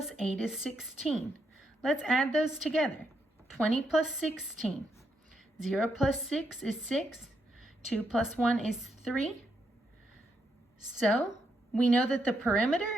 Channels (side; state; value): both; normal; correlation 0.79